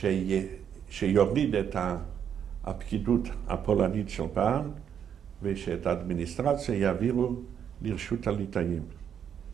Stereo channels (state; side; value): quieter; left; 8.4 dB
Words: שיוריד את הפקידות הפולנית של פעם, ושאת האדמיניסטרציה יעבירו לרשות הליטאים.